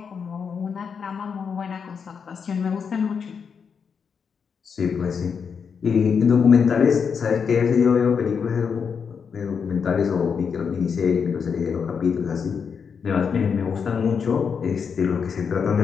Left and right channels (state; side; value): quieter; right; 6.3 dB